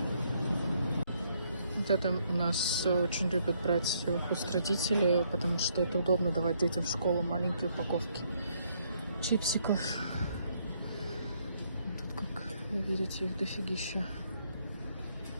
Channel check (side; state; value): both; inverted; correlation -0.71